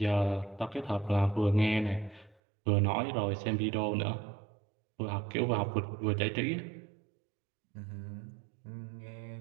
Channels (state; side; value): drops out; left; at 2.4 s